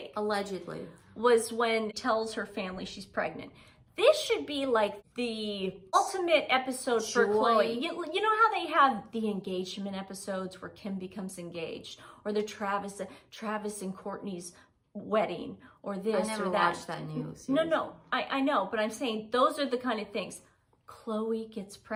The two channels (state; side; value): identical; both; correlation 1.00